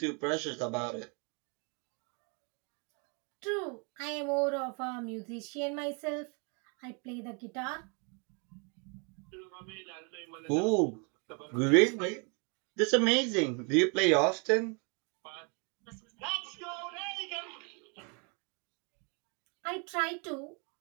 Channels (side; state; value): left; quieter; 35.4 dB